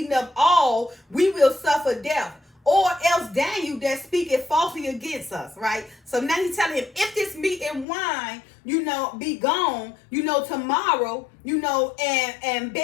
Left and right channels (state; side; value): drops out; right; at 7.9 s